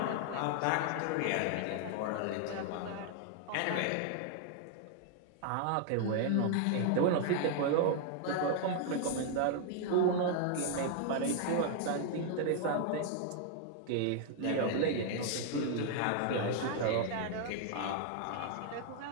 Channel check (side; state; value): both; different; correlation 0.00